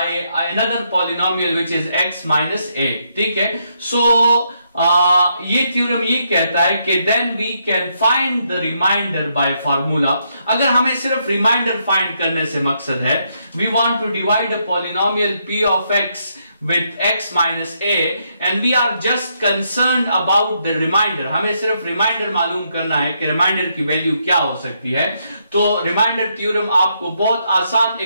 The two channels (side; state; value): both; inverted; correlation -0.77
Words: another polynomial which is x minus a। ठीक है, so ये theorem ये कहता है कि then we can find the remainder by formula. अगर हमें सिर्फ रिमाइंडर फाइंड करने से मकसद है, we want to divide a polynomial p of x with x minus a and we are just concerned about the remainder। हमें सिर्फ reminder मालूम करना है कि रिमाइंडर की वैल्यू क्या हो सकती है। तो रिमाइंडर थ्योरम आपको बहुत आसान